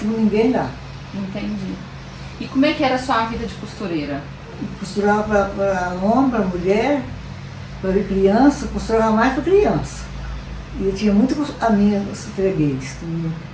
com ninguém lá. Entendi. E como é que era a sua vida de costureira? Costurava para homem, para mulher, para criança, costurava mais para criança. E eu tinha muito amigos fregueses que me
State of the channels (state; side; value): identical; both; correlation 1.00